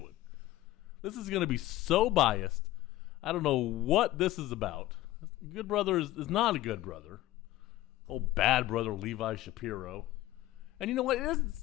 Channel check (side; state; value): right; quieter; 15.9 dB